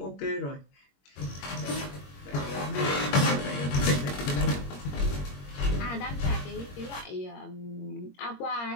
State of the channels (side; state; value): right; late; 21 ms